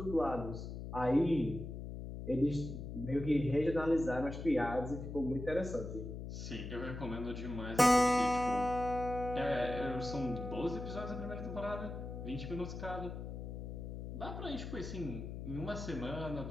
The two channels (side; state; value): left; noise; hum, 7 dB below the sound